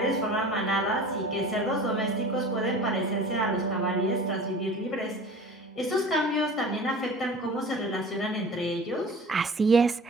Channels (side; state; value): both; normal; correlation 0.40